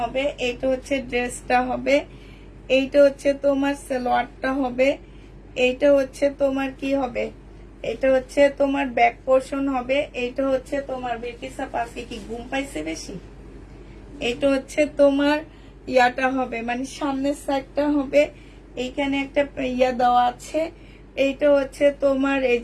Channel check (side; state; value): both; identical; correlation 1.00